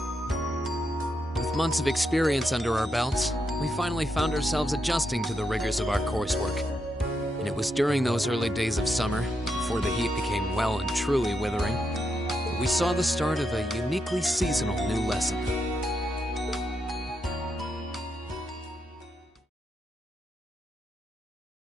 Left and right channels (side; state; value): both; normal; correlation 0.82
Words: Months of experience under our belts, we finally found ourselves adjusting to the rigors of our coursework. And it was during those early days of summer, before the heat became well and truly withering, that we saw the start of a uniquely seasonal new lesson.